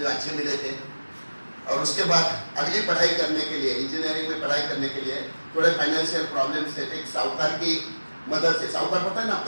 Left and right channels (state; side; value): inverted; both; correlation -1.00